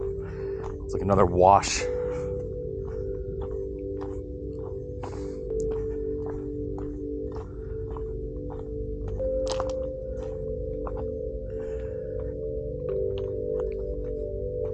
It's like another wash.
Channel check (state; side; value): identical; both; correlation 1.00